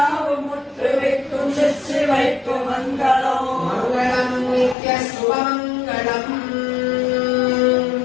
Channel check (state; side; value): drops out; right; at 4.8 s